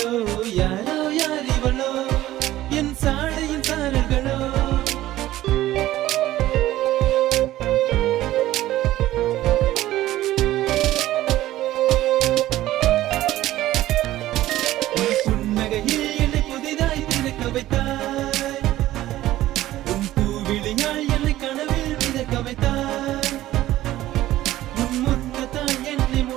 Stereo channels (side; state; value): left; quieter; 15.0 dB